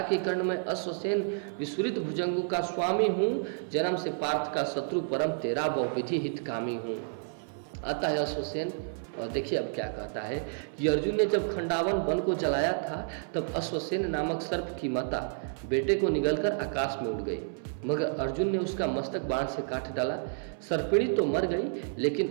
कर्ण में अश्वसेन विस्फुरित भुजंगों का स्वामी हूँ, जन्म से पार्थ का शत्रु परम तेरा बहुविधि हितकामी हूँ। आता है अश्वसेन और देखिए अब क्या कहता है कि अर्जुन ने जब खंडावन वन को जलाया था तब अश्वसेन नामक सर्प की माता बेटे को निगलकर आकाश में उड़ गई, मगर अर्जुन ने उसका मस्तक बाण से काट डाला। सर्पिणी तो मर गई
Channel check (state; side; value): silent; left; 58 dB below the other